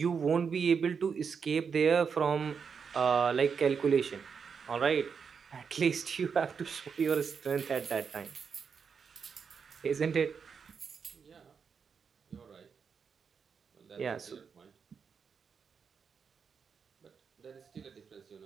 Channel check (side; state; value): left; quieter; 6.2 dB